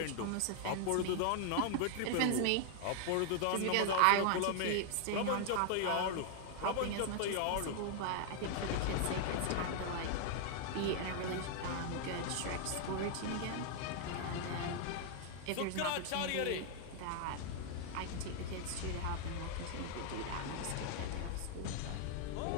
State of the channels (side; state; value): both; different; correlation 0.00